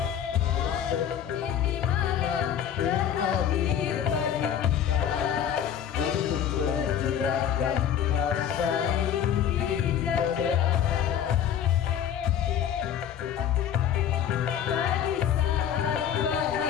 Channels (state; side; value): quieter; right; 9.3 dB